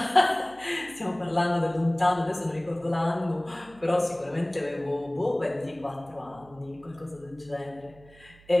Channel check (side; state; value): right; noise; hum, 25 dB below the sound